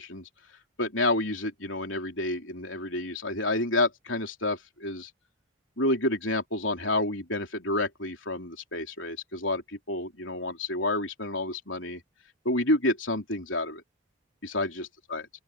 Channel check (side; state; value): both; normal; correlation -0.11